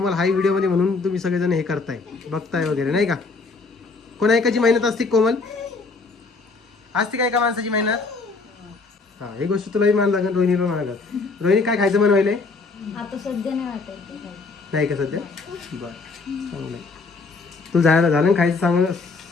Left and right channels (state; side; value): quieter; right; 4.0 dB